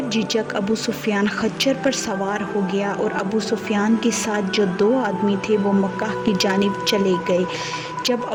جھجک ابو سفیان خچر پر سوار ہو گیا اور ابو سفیان کے ساتھ جو 2 آدمی تھے وہ مکہ کی جانب چلے گئے۔ جب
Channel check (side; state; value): both; identical; correlation 1.00